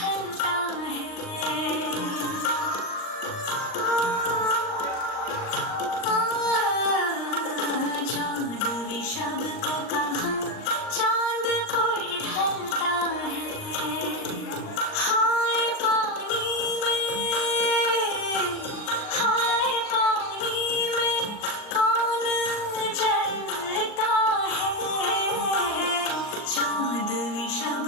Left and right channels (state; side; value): late; right; 39 ms